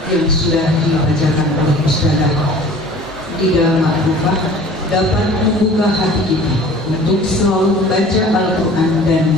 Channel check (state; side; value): normal; both; correlation 0.45